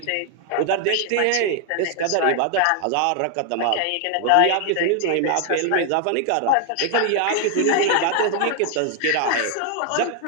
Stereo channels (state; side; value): different; both; correlation 0.00